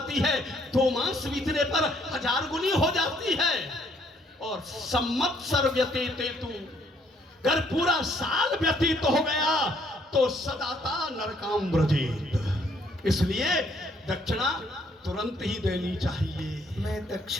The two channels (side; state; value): both; normal; correlation 0.67